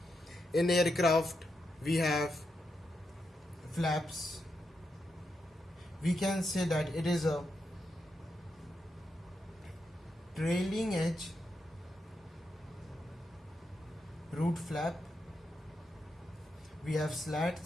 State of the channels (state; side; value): normal; both; correlation 0.84